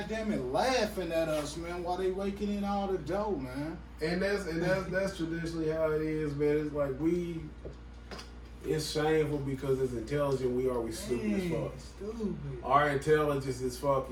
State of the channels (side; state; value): both; identical; correlation 1.00